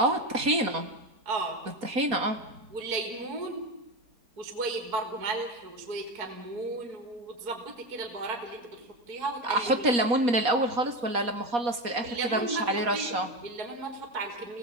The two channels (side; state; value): left; late; 4.2 ms